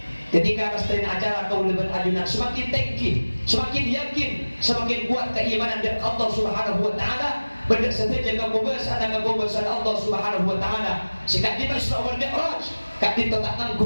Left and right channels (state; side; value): inverted; both; correlation -1.00